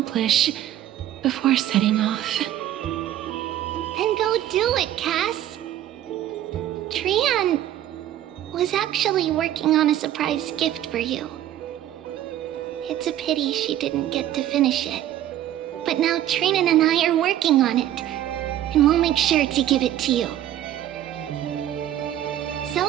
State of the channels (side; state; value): left; quieter; 12.3 dB